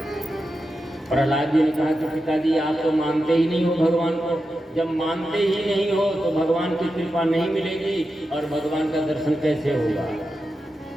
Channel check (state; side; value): normal; both; correlation 0.90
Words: प्रहलाद जी ने कहा कि पिताजी, आप तो मानते ही नहीं हो भगवान को। जब मानते ही नहीं हो तो भगवान की कृपा नहीं मिलेगी और भगवान का दर्शन कैसे होगा।